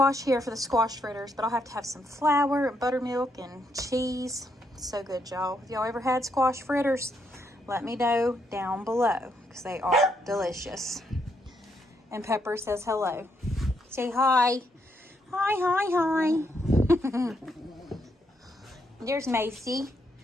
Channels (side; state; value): both; normal; correlation 0.77